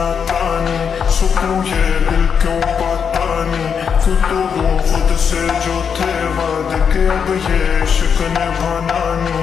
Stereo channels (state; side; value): quieter; right; 6.9 dB